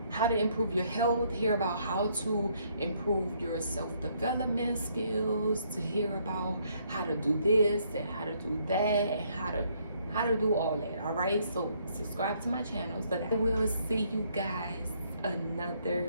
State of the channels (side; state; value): both; inverted; correlation -0.69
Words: how to improve your health, hear about how to improve your self-development skills, to hear about how to do this and how to do that, and how to do all that. All right, so subscribe to my channel so that I will see you guys